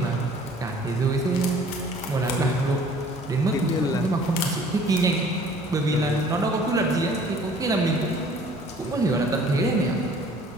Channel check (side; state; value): both; normal; correlation 0.53